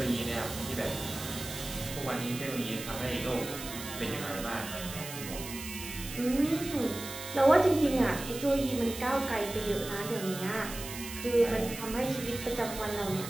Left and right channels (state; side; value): noise; right; hiss, 10 dB below the sound